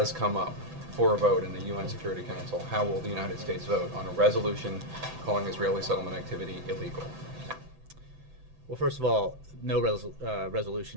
come up for a vote in the UN Security Council, how will the United States vote on a resolution calling Israeli settlement activity illegal? Well, first of all, no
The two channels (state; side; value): late; left; 6.0 ms